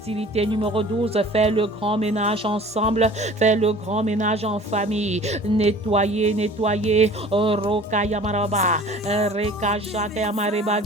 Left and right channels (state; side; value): normal; both; correlation 0.46